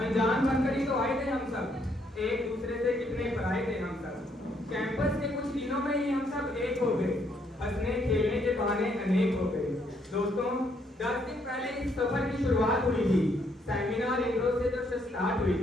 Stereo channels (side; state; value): both; normal; correlation 0.71